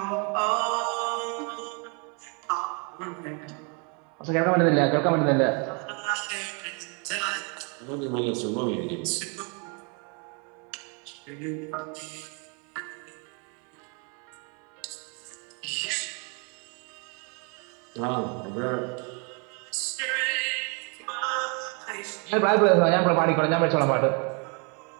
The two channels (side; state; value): left; quieter; 35.2 dB